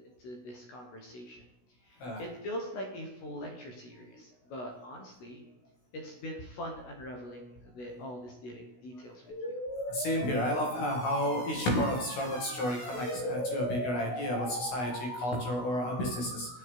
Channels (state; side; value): late; right; 16 ms